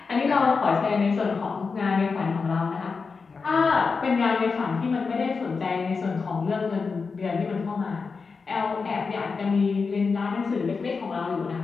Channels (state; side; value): quieter; right; 4.8 dB